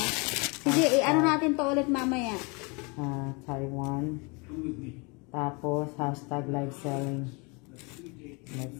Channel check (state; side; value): quieter; right; 30.0 dB